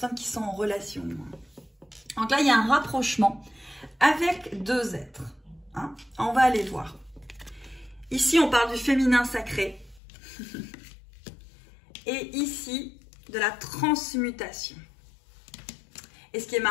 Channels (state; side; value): drops out; right; at 10.0 s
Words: qui sont en relation. Donc là, il y a un rapprochement avec 2 êtres. Hein. On va aller voir. Ici, on parle du féminin sacré. Et ici, de la transmutation. Et ce qui est